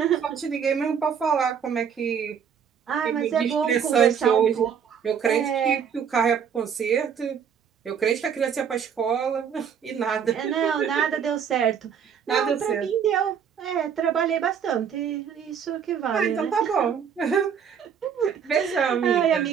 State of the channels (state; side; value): quieter; left; 7.5 dB